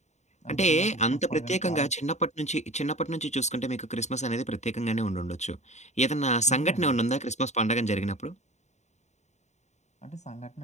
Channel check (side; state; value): right; late; 0.33 ms